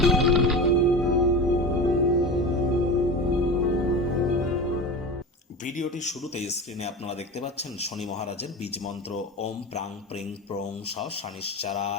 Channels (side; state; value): both; normal; correlation 0.28